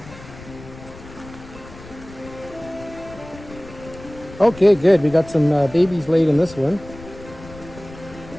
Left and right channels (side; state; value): left; noise; rumble, 17 dB below the sound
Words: Okay, good. We got some babies laid in this one.